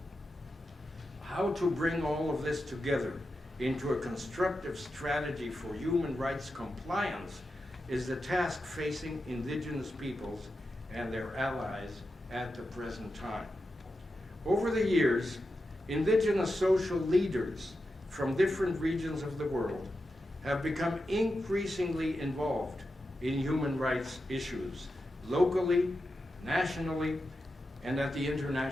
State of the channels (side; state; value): both; normal; correlation 0.89